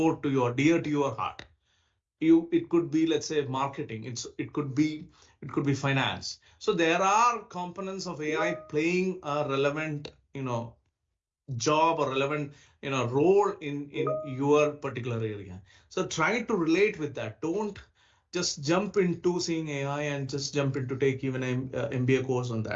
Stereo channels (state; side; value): identical; both; correlation 1.00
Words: to your, dear to your heart. it could be, let's say, marketing. It could be finance. So there are components of AI playing a relevant, job or relevant, role in your particular area. So try to relate with that. Don't just jump into seeing AI and just jump into take even an MBA course on